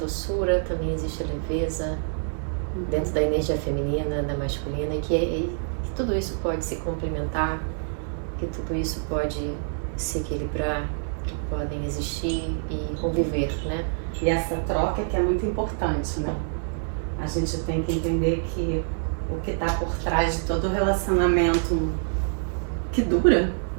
também existe leveza, dentro da energia feminina, da masculina, e que tudo isso pode se complementar, que tudo isso pode se equilibrar, que podem existir e conviver, né? E essa troca que é muito importante, né? A gente tem que entender que o que está por trás de todo relacionamento que dura,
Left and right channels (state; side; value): silent; left; digital silence